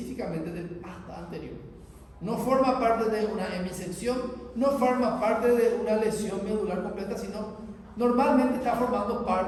del asta anterior. No forma parte de una hemisección, no forma parte de una lesión medular completa, sino normalmente está formando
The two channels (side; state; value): both; identical; correlation 1.00